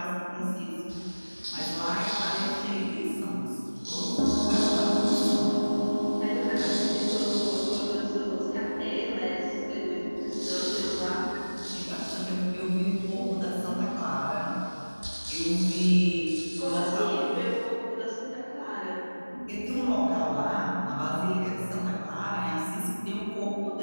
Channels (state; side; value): inverted; both; correlation -1.00